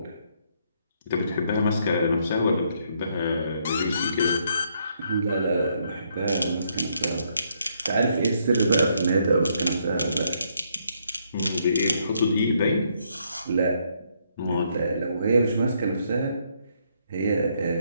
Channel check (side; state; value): both; inverted; correlation -0.72